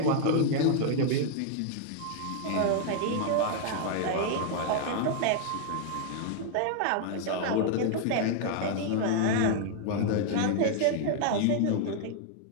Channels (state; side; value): different; both; correlation 0.00